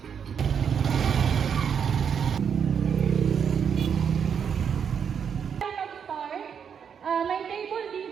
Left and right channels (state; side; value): quieter; left; 7.4 dB